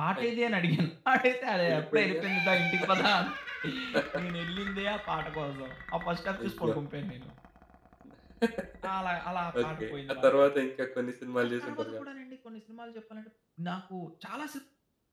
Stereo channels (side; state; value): both; identical; correlation 1.00